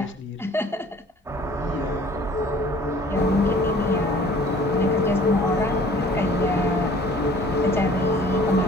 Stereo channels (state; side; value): normal; both; correlation 0.51